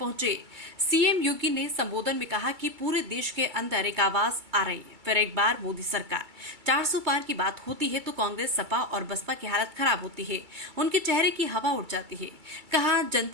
सीएम योगी ने संबोधन में कहा कि पूरे देश के अंदर एक आवाज आ रही है, फिर एक बार मोदी सरकार। 400 पार की बात होती है तो कांग्रेस, सपा और बसपा की हालत खराब होती है, उनके चेहरे की हवा उड़ जाती है। कहा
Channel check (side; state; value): left; late; 2.3 ms